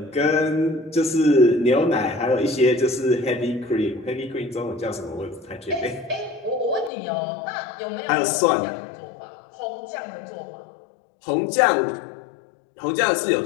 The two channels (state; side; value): drops out; right; at 6.9 s